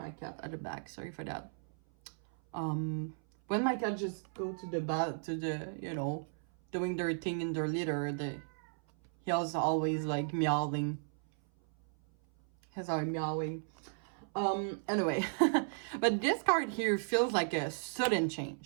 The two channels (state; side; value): silent; left; 55 dB below the other